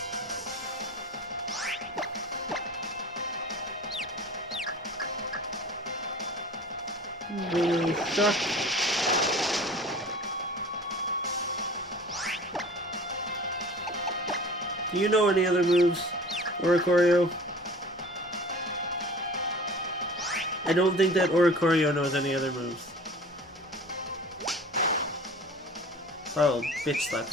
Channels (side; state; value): both; normal; correlation 0.42